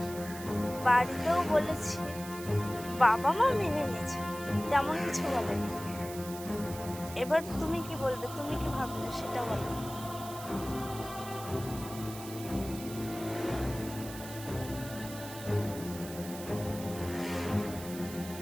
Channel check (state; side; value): noise; right; hiss, 13 dB below the sound